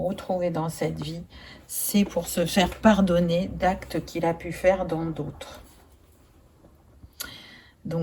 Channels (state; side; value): identical; both; correlation 1.00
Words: dans cette vie, c'est pour se faire pardonner d'actes qu'il a pu faire dans d'autres.